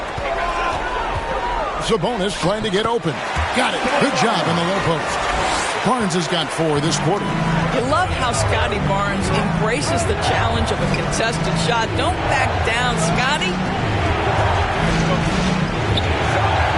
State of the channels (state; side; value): identical; both; correlation 1.00